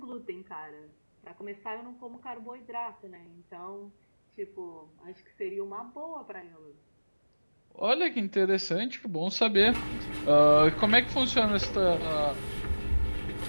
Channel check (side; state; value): both; inverted; correlation -1.00